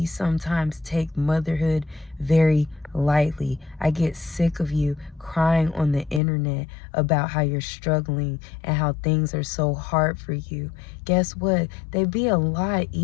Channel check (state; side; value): drops out; right; at 6.2 s